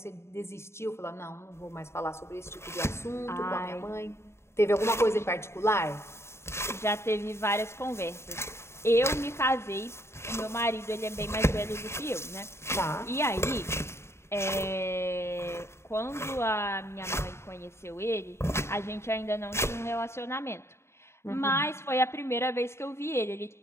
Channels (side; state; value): right; late; 0.13 ms